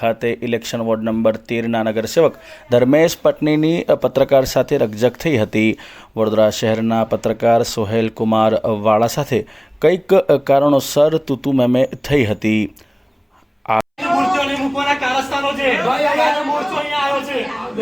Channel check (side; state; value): both; identical; correlation 1.00